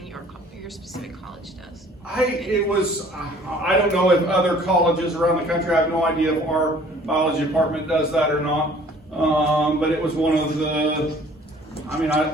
your specific college does? I don't know if other colleges around the country, I have no idea if our biology department does that or not. But it was one of the,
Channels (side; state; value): both; normal; correlation 0.53